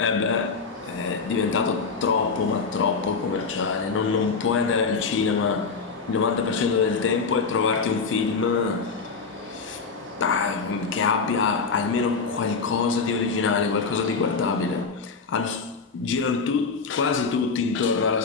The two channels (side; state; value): right; quieter; 4.9 dB